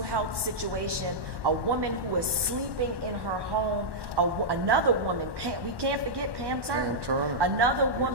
health situation, a woman who is sleeping in her home, another woman, we can't forget Pam Turner, another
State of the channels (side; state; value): left; late; 1.1 ms